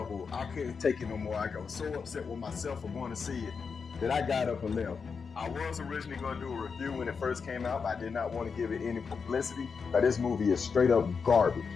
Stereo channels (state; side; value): quieter; right; 5.6 dB